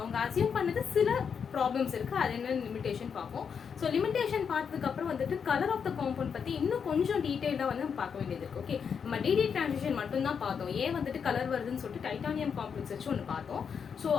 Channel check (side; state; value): right; quieter; 6.7 dB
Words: அசியூம் பண்ணது சில ப்ராப்ளம்ஸ் இருக்குது. அது என்ன லிமிடேஷன் பார்ப்போம். ஸோ லிமிடேஷன் பார்த்ததுக்கப்புறம் வந்துட்டு கலர் ஆஃப் த காம்பவுண்ட் பற்றி இன்னும் கொஞ்சம் டீட்டெயிலாக வந்து நம்ம பார்க்க வேண்டியது இருக்குது. ஓகே, நம்ம டிடி டிரான்சிஷன் மட்டும்தான் பார்த்தோம். ஏன் வந்துட்டு கலர் வருதுன்னு சொல்லிட்டு டைட்டானியம் காம்ப்ளெக்ஸ் வச்சு ஒன்று பார்த்தோம். ஸோ